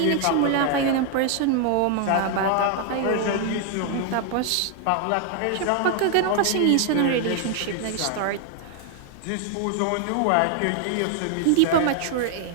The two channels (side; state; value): both; different; correlation 0.00